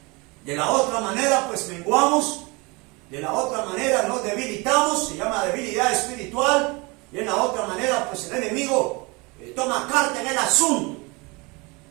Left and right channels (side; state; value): left; quieter; 26.9 dB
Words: De la otra manera, pues menguamos. De la otra manera nos debilitamos, se llama debilidad espiritual. Y en la otra manera, pues el enemigo toma carta en el asunto.